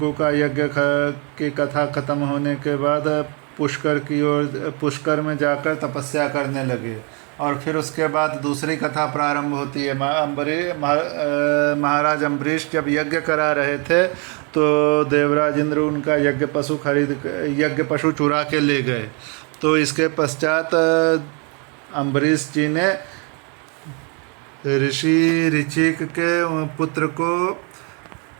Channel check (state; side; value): quieter; left; 34.6 dB